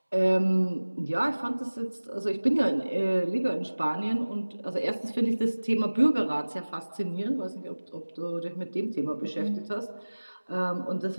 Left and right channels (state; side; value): inverted; both; correlation -1.00